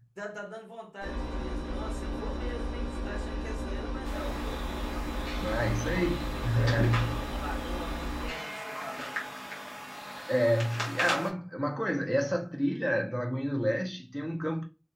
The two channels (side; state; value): both; identical; correlation 1.00